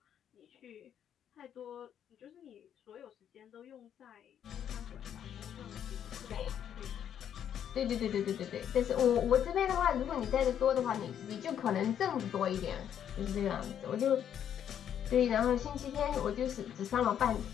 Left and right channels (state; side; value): quieter; right; 9.4 dB